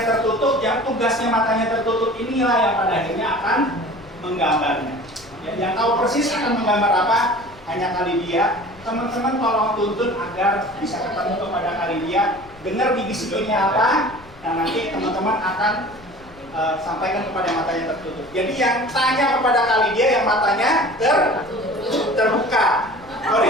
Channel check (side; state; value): left; noise; rumble, 23 dB below the sound